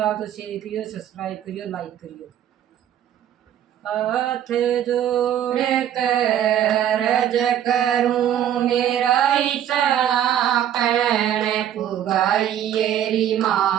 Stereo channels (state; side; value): quieter; left; 10.6 dB